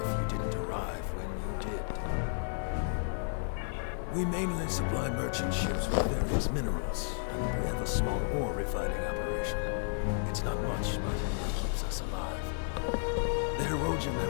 you didn't arrive when you did. We mainly supply merchant ships with various minerals, and we have a small ore refining operation. It's not much, but it keeps us alive. The Erogen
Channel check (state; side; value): silent; right; 56 dB below the other